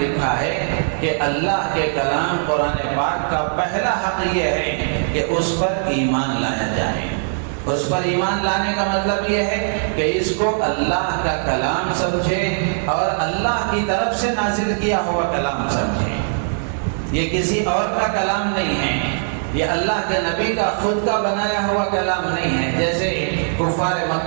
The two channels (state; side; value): silent; left; 66 dB below the other